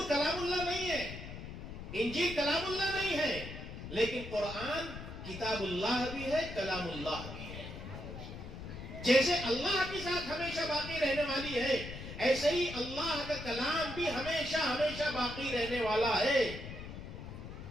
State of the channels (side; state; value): left; noise; rumble, 10 dB below the sound